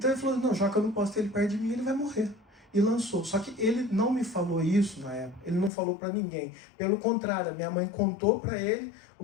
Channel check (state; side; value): drops out; right; at 5.7 s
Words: ele falou, não, já que eu não posso ter ele perto de mim, ele vai morrer. E lançou. Só que ele não me falou isso na época, ele não falou para ninguém. Pelo contrário, a minha mãe contou para ele